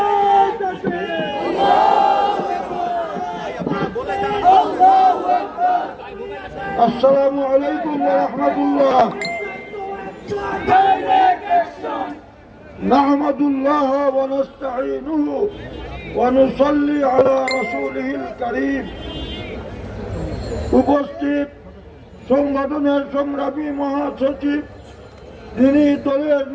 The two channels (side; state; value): both; identical; correlation 1.00